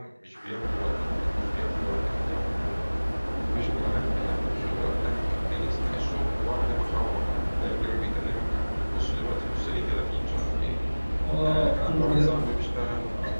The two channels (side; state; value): both; inverted; correlation -1.00